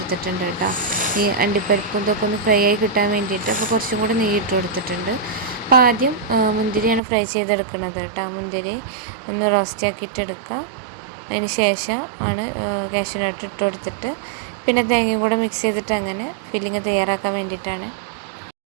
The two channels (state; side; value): drops out; left; at 7.0 s